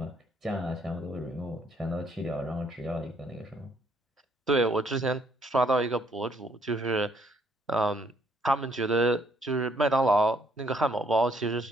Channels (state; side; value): normal; both; correlation 0.67